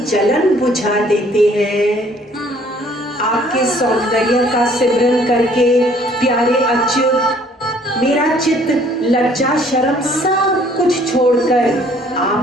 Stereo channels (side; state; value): both; normal; correlation 0.59